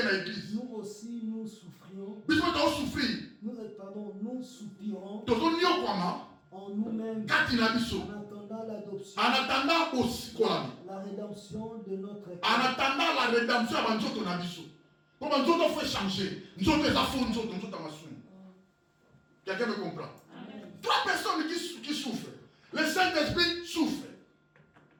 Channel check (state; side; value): identical; both; correlation 1.00